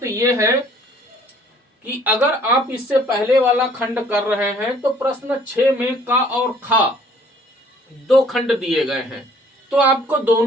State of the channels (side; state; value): both; normal; correlation 0.58